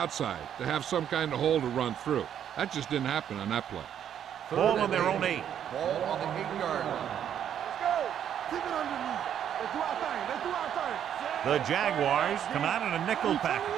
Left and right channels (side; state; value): left; quieter; 9.5 dB